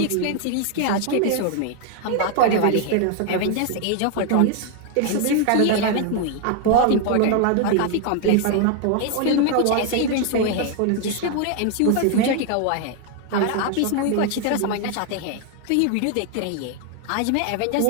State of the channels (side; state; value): both; different; correlation 0.00